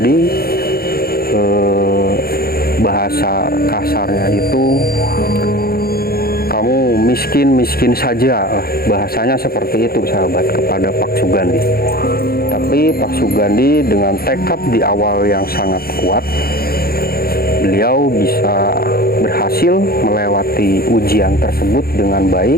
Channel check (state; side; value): late; right; 0.44 ms